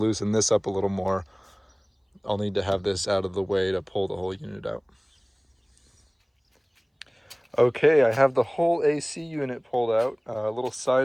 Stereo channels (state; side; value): identical; both; correlation 1.00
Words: this up a little more, I'll need to have this out of the way to pull the whole unit out. Okay, I have the whole AC unit pulled out. A little